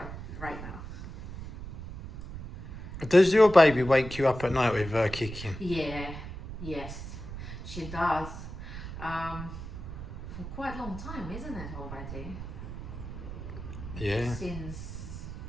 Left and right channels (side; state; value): right; noise; rumble, 9 dB below the sound